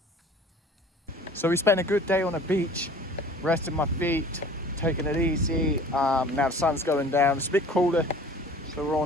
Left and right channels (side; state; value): both; normal; correlation 0.46